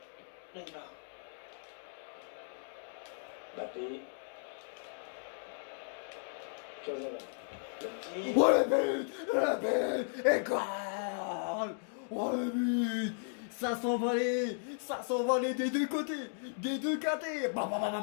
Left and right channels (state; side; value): silent; right; digital silence